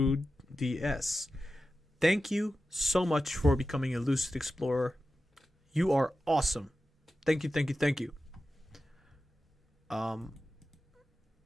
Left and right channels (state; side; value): normal; both; correlation 0.93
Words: DS. Thank you so much for becoming a Lucid Explorer. You are awesome. Thank you, thank you, thank you. I